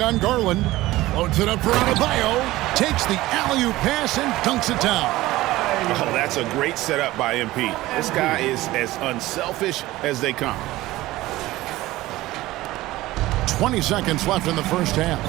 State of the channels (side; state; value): left; quieter; 17.5 dB